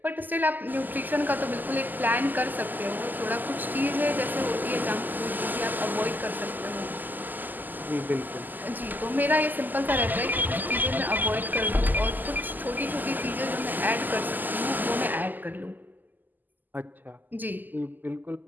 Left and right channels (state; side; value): late; left; 0.086 ms